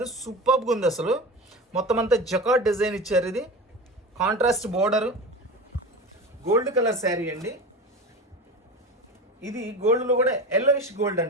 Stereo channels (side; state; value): both; normal; correlation 0.29